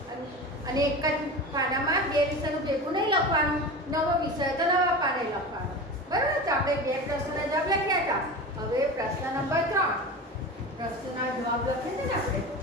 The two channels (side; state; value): both; normal; correlation 0.29